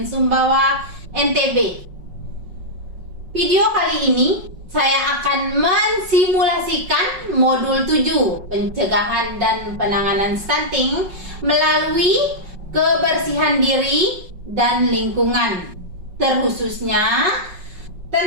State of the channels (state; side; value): late; left; 5.4 ms